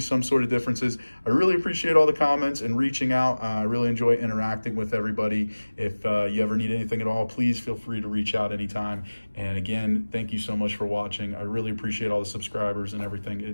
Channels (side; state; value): both; inverted; correlation -1.00